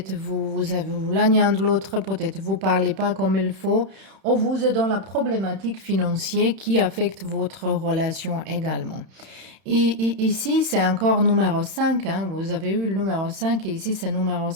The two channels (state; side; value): late; left; 31 ms